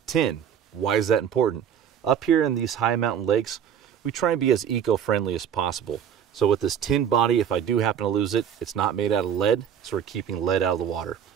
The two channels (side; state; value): left; quieter; 8.6 dB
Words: tin. Why is that important? Up here in these high mountain lakes, we try and be as eco-friendly as possible. So with this tin body, if I do happen to lose it, it's not made out of lead, so we're keeping lead out of the water.